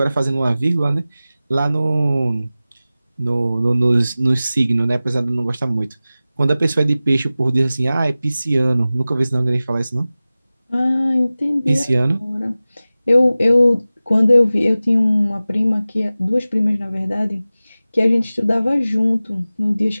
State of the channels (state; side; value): inverted; both; correlation -0.96